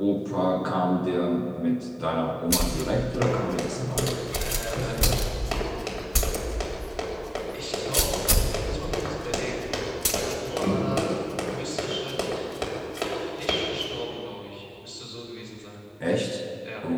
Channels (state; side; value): identical; both; correlation 1.00